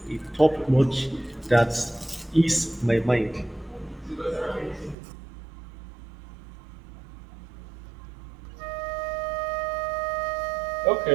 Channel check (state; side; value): drops out; left; at 5.0 s